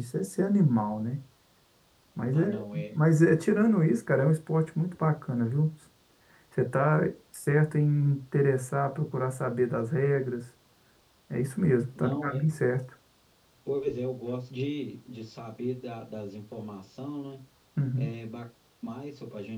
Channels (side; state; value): both; identical; correlation 1.00